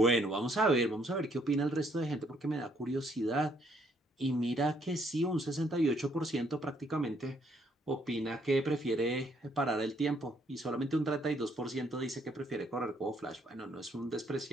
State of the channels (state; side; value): normal; both; correlation 0.68